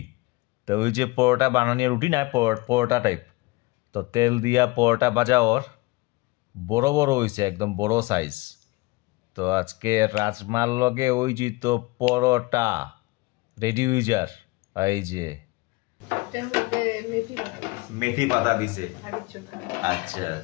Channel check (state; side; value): quieter; right; 23.0 dB